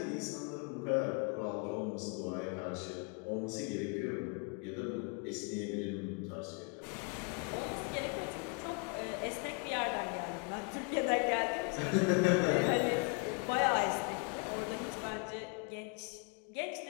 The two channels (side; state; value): right; quieter; 35.0 dB